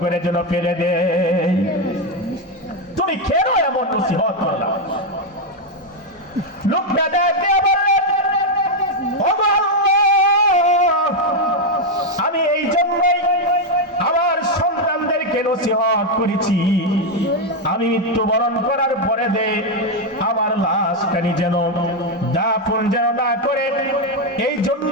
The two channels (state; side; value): normal; both; correlation 0.04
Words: করে যেন ফেলে দেয়? তুমি কেন এমন নসিহত করলা? লোকটা দেখে বললেন, ওগো আল্লাহ, আমি এই জন্যই আমার সন্তানদেরকে নসিহত করেছি, আমি মৃত্যুবরণ করার পরে আমার লাশখানি যেন দাফন যেন না করে, এই